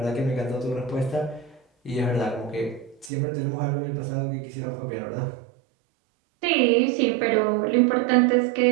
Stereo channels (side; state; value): left; drops out; at 3.1 s